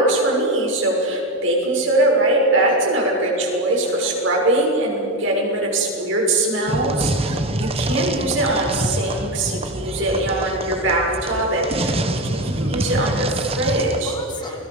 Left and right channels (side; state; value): both; normal; correlation 0.15